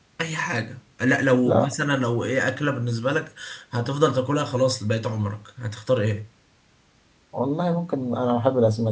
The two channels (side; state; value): both; identical; correlation 1.00